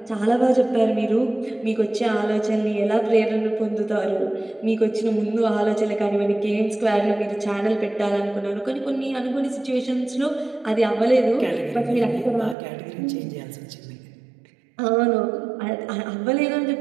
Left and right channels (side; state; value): left; drops out; at 12.6 s